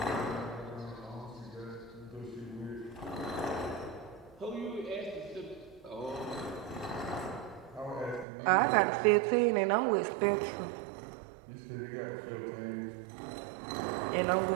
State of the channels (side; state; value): left; drops out; at 8.2 s